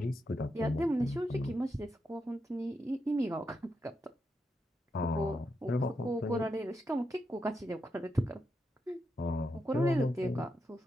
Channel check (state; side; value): normal; both; correlation 0.84